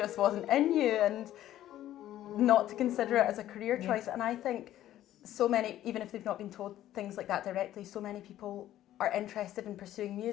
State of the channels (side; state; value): right; quieter; 13.0 dB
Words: wasn't in you and not to consider it as a career choice. And I think so many, even if they've not been told things like that directly, so many people are interested in pursuing